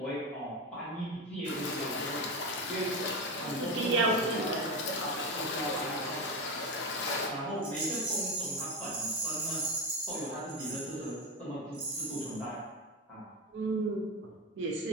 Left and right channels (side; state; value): both; normal; correlation 0.16